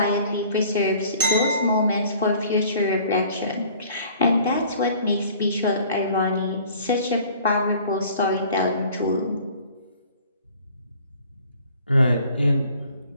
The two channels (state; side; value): inverted; both; correlation -0.51